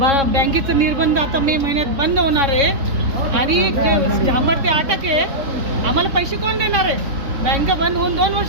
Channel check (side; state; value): left; late; 3.6 ms